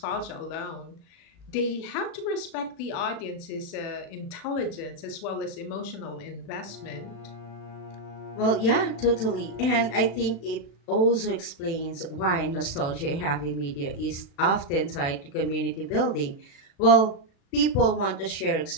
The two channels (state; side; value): late; right; 36 ms